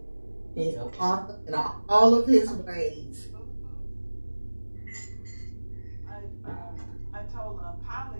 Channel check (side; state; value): both; inverted; correlation -1.00